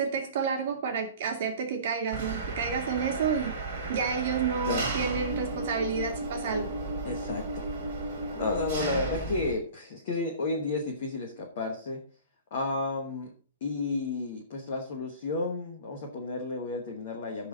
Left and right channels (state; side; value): inverted; both; correlation -0.41